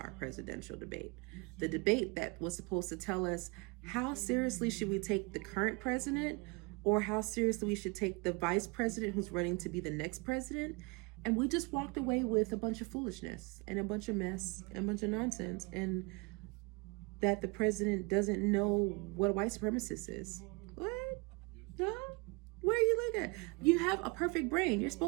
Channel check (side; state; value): left; quieter; 29.6 dB